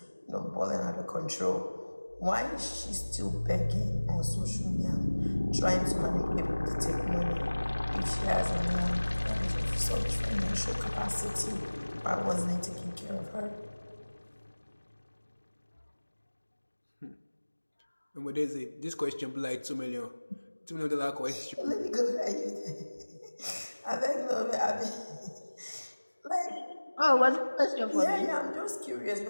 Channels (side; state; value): both; inverted; correlation -1.00